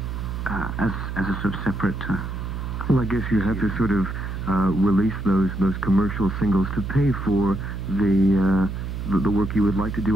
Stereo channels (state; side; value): noise; right; hum, 5 dB below the sound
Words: as a sort of separate. Well, I guess you have to sort of release those commercial singles to pay for the work you would like to